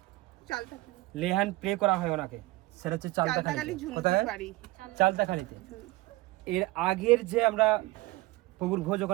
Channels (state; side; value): quieter; left; 20.1 dB